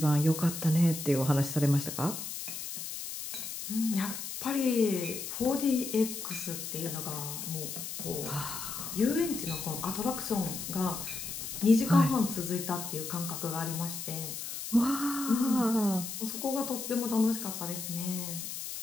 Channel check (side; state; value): left; noise; hiss, 7 dB below the sound